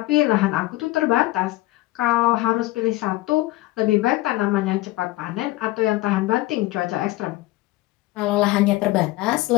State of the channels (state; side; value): quieter; right; 18.4 dB